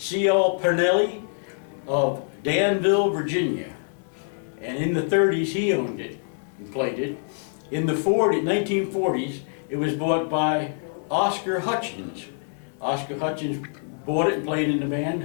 Pernelli of Danville, Virginia. And in the 30s, he owned it and played it. In the 1940s, it was bought by Oscar Hutchins. Oscar Hutchins bought it and played in the band,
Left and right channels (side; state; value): right; silent; digital silence